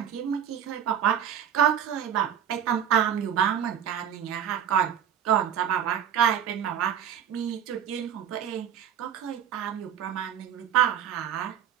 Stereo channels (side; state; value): left; quieter; 9.3 dB